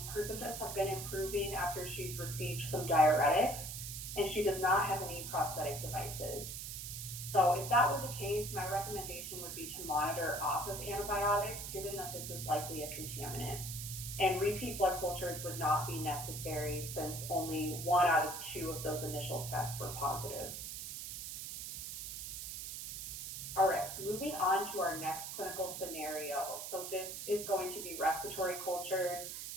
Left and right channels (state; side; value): noise; right; hiss, 7 dB below the sound